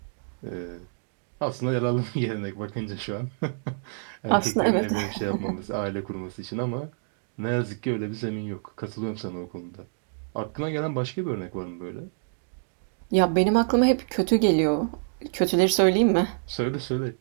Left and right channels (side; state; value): left; silent; digital silence